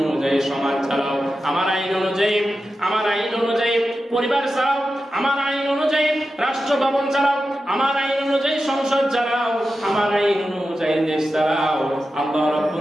অনুযায়ী সমাজ চালাও, আমার আইন অনুযায়ী পরিবার চালাও, আমার আইন অনুযায়ী রাষ্ট্র ভবন চালাও, আমার আইন অনুযায়ী সংসদ চালাও, আমার আইন অনুযায়ী দেশ চালাও। আল্লাহ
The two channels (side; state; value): both; normal; correlation 0.91